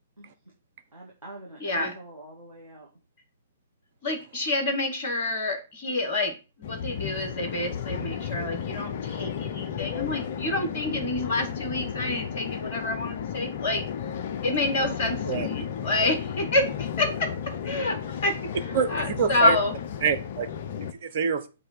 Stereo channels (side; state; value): both; inverted; correlation -0.40